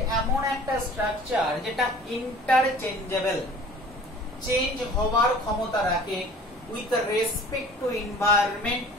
এমন একটা স্ট্রাকচার যেটা ইন্টারচেঞ্জেবল, চেঞ্জ হওয়ার ক্ষমতা রাখে with respect to environment,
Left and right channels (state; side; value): normal; both; correlation 0.47